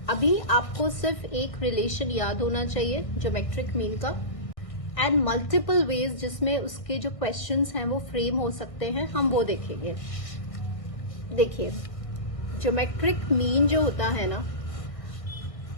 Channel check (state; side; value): late; right; 1.6 ms